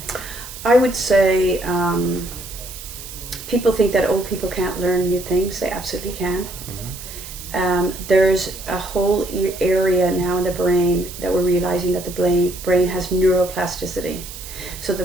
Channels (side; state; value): right; noise; hiss, 13 dB below the sound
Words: I would say people think that old people can't learn new things. They absolutely can. Mm-hmm. There's a whole area now in the brain that we're realizing that the brain has neuroplasticity, so